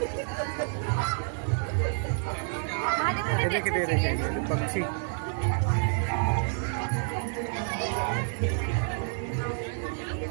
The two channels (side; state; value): left; silent; 59 dB below the other